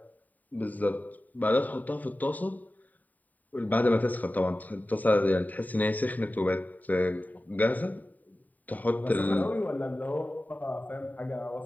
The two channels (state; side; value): late; right; 0.080 ms